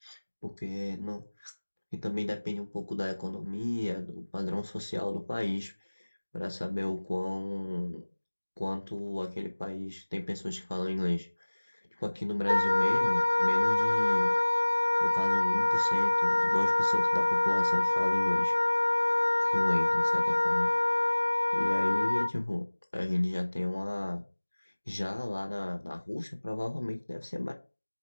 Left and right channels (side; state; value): both; inverted; correlation -1.00